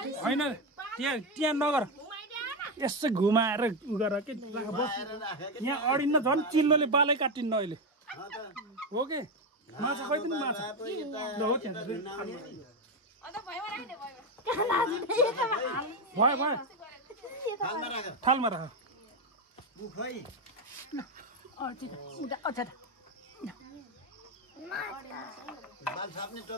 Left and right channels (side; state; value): both; normal; correlation 0.10